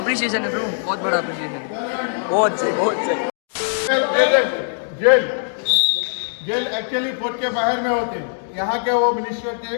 है ब्रो, बहुत बड़ा अप्रिशिएशन है, बहुत सही, बहुत सही। जेल एक्चुअली फोर्ट के बाहर में होते हैं। यहाँ के वो मिनिस्टर थे,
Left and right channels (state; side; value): silent; right; digital silence